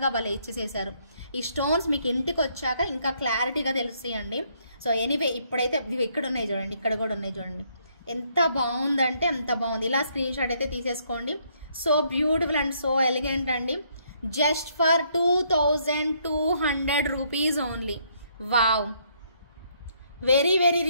భలే ఇచ్చేసేసారు. ఈ స్టోన్స్ మీకు ఇంటికి వచ్చాక ఇంకా క్లారిటీగా తెలుస్తాయండి. సో ఎనీవే ఇప్పుడైతే ఇక్కడ ఉన్నాయి చూడండి, ఇక్కడ కూడా ఉన్నాయి చూడండి. ఎంత బాగుందంటే అంత బాగుంది. ఇలా స్క్రీన్ షాట్ అయితే తీసేసుకోండి. So beautiful and so elegant అండి. Just for 2200 rupees only. Wow, very very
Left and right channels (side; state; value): both; inverted; correlation -0.70